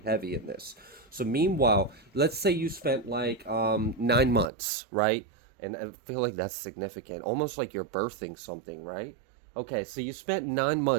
in this. So meanwhile, let's say you spent like 9 months, right? And I feel like that's significant, almost like you're birthing something, right? Okay, so you spent 9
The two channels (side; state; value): left; drops out; at 4.5 s